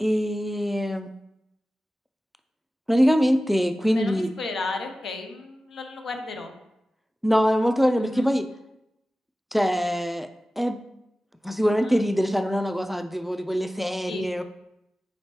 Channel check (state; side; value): normal; both; correlation 0.96